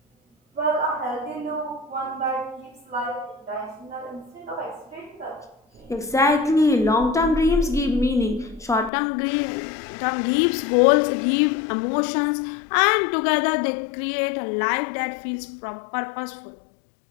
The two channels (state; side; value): drops out; right; at 8.9 s